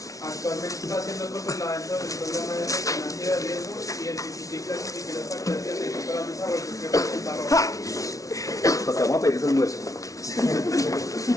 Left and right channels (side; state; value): right; late; 0.17 ms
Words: Actualmente está siendo controlada dentro del programa de resonancia de riesgo y identifica y clasifica los factores de riesgo para el desarrollo que presenta Rosa. Pues te vamos a pedir ese almuerzo.